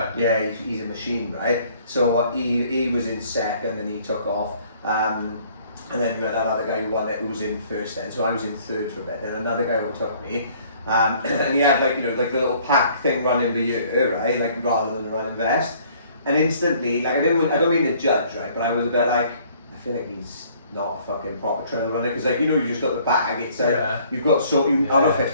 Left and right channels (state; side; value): inverted; both; correlation -0.58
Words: yeah, he's a machine, right? So he was in second and he took off. And then we had that other guy who won it, who was in first then. So I was in 3rd for a bit. Then another guy overtook me. And he had like, you know, like the little pack thing running for you, right? Like rather than a running vest. And instantly, like I don't mean to judge, right? But I was a bit like, I feel like he's not a fucking proper trail runner, because like, you know, you just got the bag. It's like you've got out of